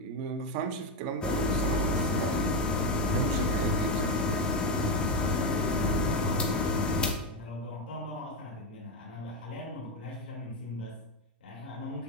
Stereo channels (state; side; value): normal; both; correlation 0.09